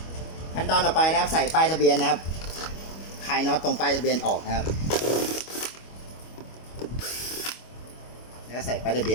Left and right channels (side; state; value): right; late; 25 ms